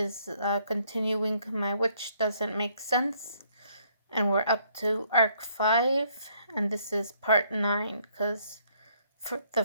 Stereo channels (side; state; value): both; inverted; correlation -0.68